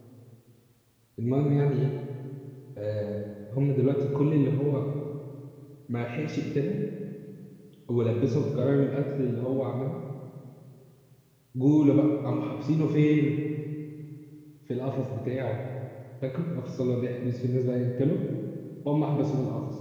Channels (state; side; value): identical; both; correlation 1.00